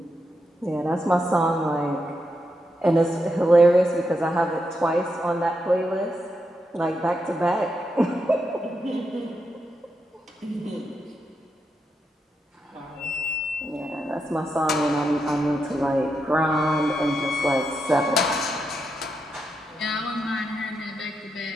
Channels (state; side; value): normal; both; correlation 0.84